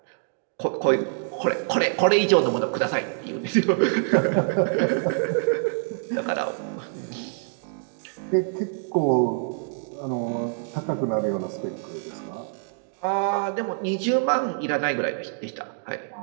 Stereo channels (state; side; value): silent; left; digital silence